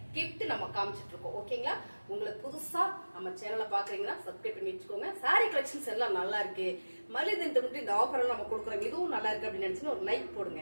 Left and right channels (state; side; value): inverted; both; correlation -1.00